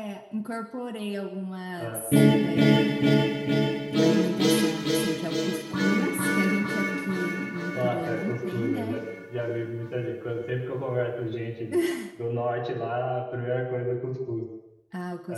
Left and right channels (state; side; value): identical; both; correlation 1.00